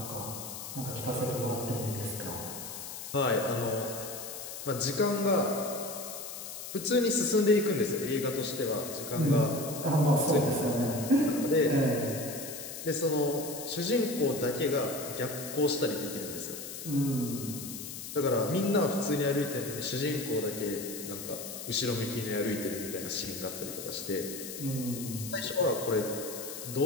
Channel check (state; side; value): noise; left; hiss, 9 dB below the sound